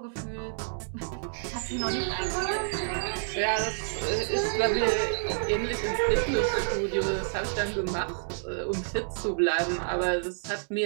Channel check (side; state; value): left; silent; digital silence